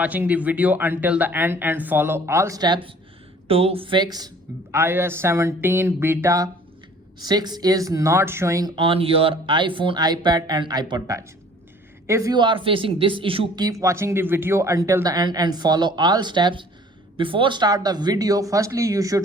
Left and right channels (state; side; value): normal; both; correlation 0.52